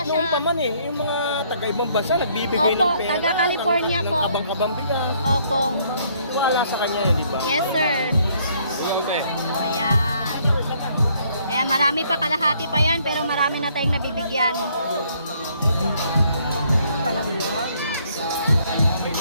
Kahit siya. noon pa man yung mga taga-ibang bansa, nagbibigay Opo, ng pera. taga-California po. Ng kabang-kabang bigas. Opo. Wala sa kanya yun, di ba? Yes, sir. Ayan. Kaya marami pa, kalahati pa yan, pero marami na tayong nabibigyan.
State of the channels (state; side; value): inverted; both; correlation -0.66